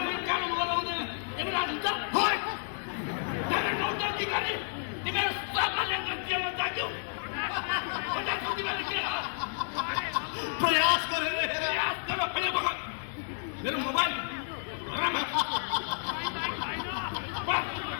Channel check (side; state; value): right; silent; digital silence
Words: कानुन लगाउने यमराज हुन्छ। तिमीहरू सबैले गल्तीमा जाग्यौ। प्रयास गरेर मेरो मोबाइल